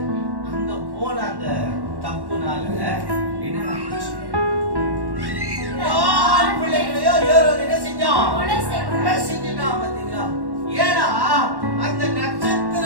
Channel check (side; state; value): left; late; 1.1 ms